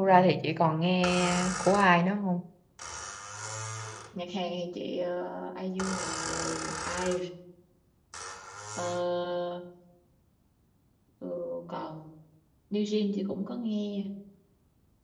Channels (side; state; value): both; identical; correlation 1.00